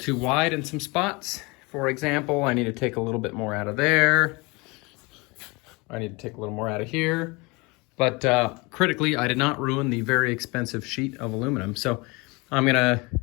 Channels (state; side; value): quieter; right; 26.1 dB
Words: wide in some spots. For example, I need to take a little bit more out of there. I need to take a little more out of here. But critically, I did not ruin the very expensive sheet of aluminum. So I'm gonna